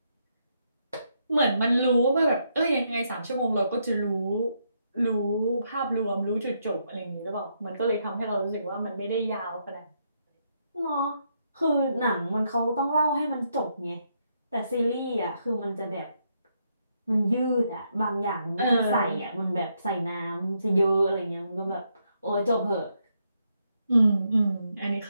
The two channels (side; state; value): both; inverted; correlation -0.78